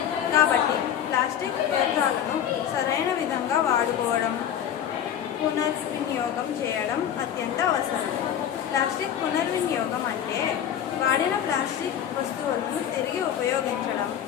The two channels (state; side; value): quieter; right; 9.6 dB